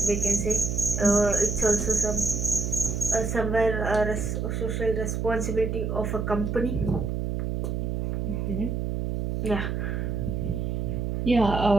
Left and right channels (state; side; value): noise; right; hum, 1 dB below the sound